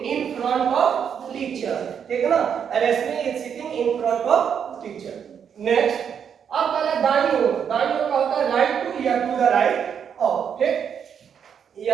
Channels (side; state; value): left; quieter; 7.7 dB